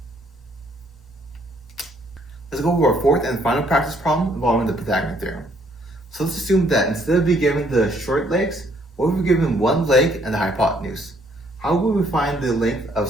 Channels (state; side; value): normal; both; correlation 0.66